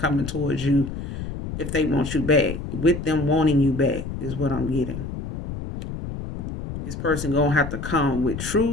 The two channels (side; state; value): left; noise; rumble, 7 dB below the sound